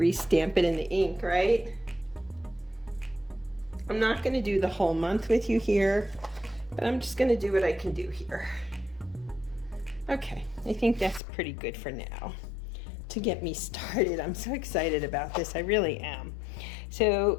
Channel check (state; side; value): drops out; right; at 11.2 s